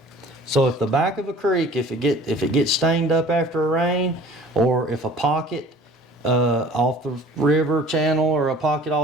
So if the back of a creek, if it gets stained up after a rain, or if a pocket off the river channel, or a pocket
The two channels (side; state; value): both; normal; correlation 0.48